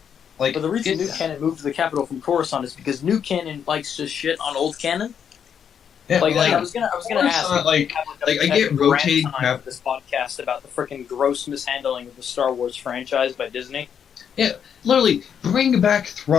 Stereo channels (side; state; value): right; quieter; 7.9 dB